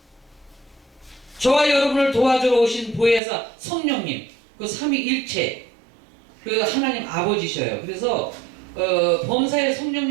저와 여러분을 도와주러 오신 보혜사 성령님, 그 삼위일체 그 하나님 아버지셔요. 그래서 범사의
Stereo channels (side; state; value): left; drops out; at 3.2 s